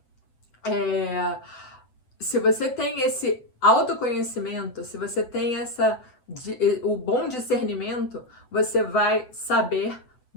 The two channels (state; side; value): late; right; 7.9 ms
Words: se você tem esse autoconhecimento, se você tem o bom discernimento, você vai saber,